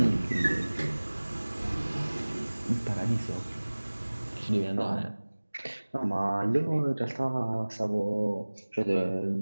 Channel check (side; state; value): both; inverted; correlation -1.00